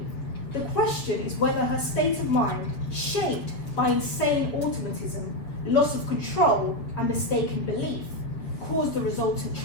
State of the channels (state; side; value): late; right; 7.4 ms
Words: the question is whether her state of mind, shaped by insane automatism, loss of control, and mistaken belief, caused the resultant